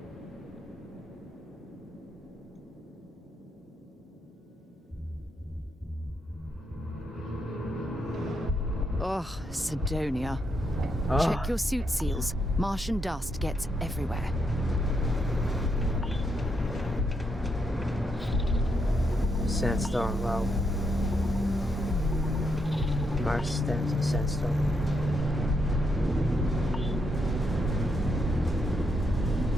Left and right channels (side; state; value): both; normal; correlation 0.79